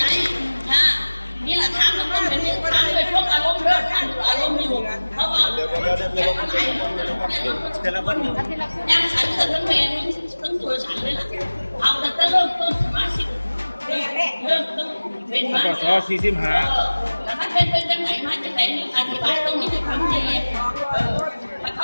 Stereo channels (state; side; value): inverted; both; correlation -1.00